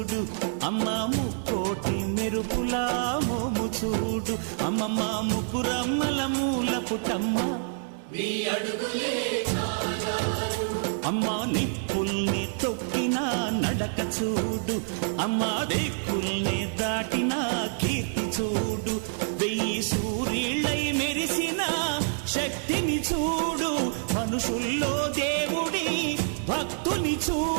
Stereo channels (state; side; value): silent; left; 60 dB below the other